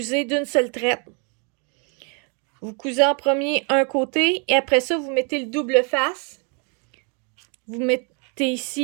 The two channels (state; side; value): quieter; left; 37.2 dB